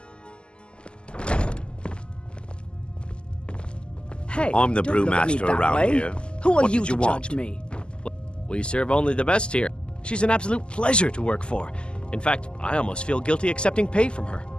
Hey, I'm the don't look at me brewmaster that around way. here. Who are What you did to you want? judge me? We serve only the best here. She's an absolute pleasure to work for. In fact, I almost feel guilty accepting pay from her.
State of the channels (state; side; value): late; right; 0.050 ms